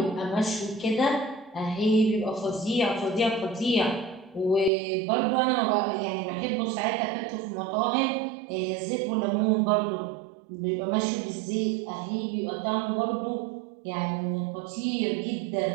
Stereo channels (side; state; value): left; drops out; at 4.7 s